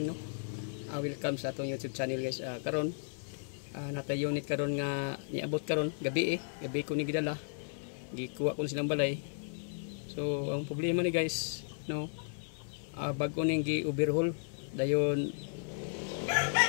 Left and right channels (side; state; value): right; silent; 55 dB below the other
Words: no. Welcome sa atong YouTube channel guys. Karon nata unit karon nga niabot karon gabi gabi ko ni gidala. Gikuha ko silang balay. So ang problema ni guys no, bago ning gi-overhaul dayon